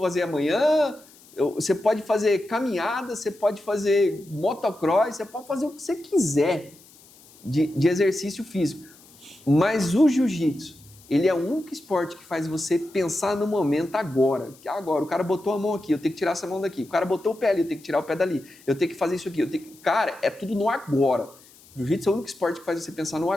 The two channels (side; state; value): left; noise; hiss, 25 dB below the sound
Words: amanhã. Você pode fazer caminhada, você pode fazer motocross, você pode fazer o que você quiser de exercício físico. Mas o jiu-jitsu, ele é o único esporte que faz você pensar no momento agora. Agora, o cara botou a mão aqui, eu tenho que tirar essa mão daqui. O cara botou o pé ali, eu tenho que tirar o pé dali. Eu tenho que fazer isso aqui. Cara, é tudo no agora. O jiu-jitsu é o único esporte que faz você pensar no